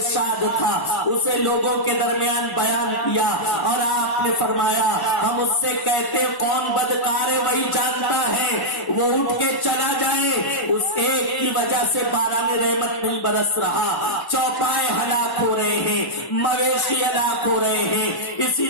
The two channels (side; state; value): right; late; 1.1 ms